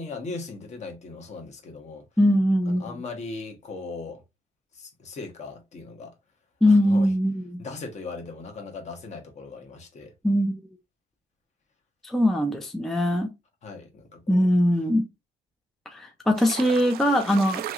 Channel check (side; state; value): both; normal; correlation 0.88